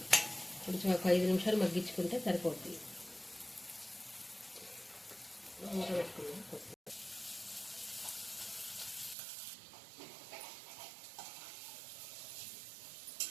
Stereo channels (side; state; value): left; drops out; at 9.2 s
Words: కొంచెం ఒక 5 నిమిషాలు మగ్గించుకుంటే సరిపోతుంది. మూత పెట్టుకుందాం.